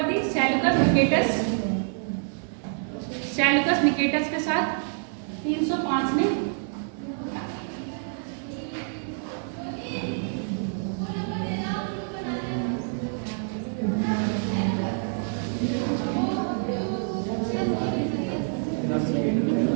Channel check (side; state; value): left; silent; 60 dB below the other